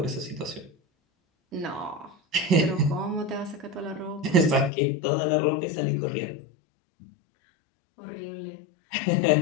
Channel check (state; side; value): drops out; right; at 4.7 s